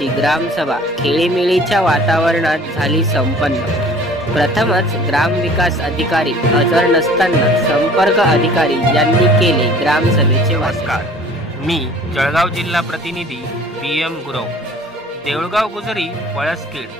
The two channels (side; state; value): both; normal; correlation 0.49